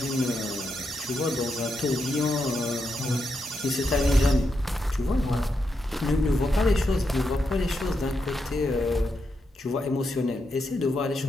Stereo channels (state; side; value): normal; both; correlation 0.83